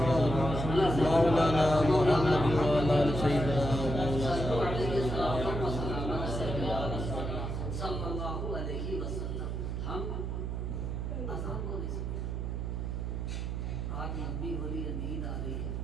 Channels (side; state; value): right; noise; hum, 3 dB below the sound